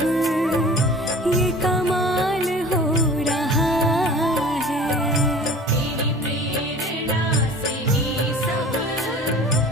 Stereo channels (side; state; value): both; normal; correlation 0.43